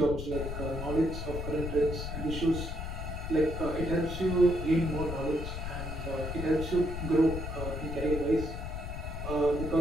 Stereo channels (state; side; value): noise; left; rumble, 5 dB below the sound